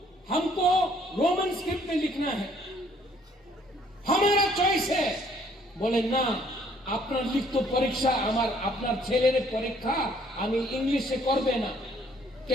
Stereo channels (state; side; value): normal; both; correlation 0.62